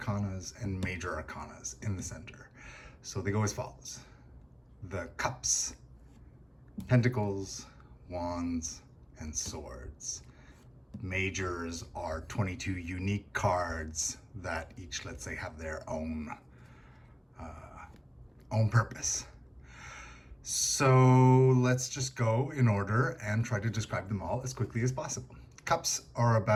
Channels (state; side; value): identical; both; correlation 1.00